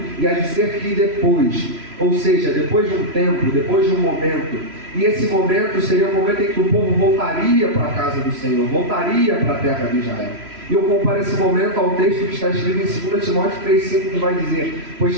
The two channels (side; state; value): left; late; 3.0 ms